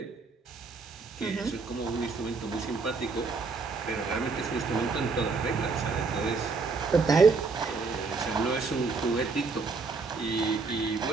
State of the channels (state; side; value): quieter; left; 4.3 dB